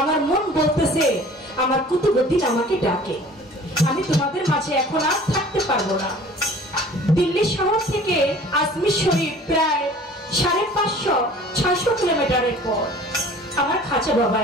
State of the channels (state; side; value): normal; both; correlation 0.47